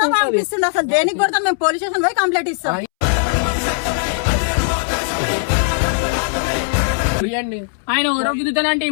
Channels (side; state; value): right; silent; 67 dB below the other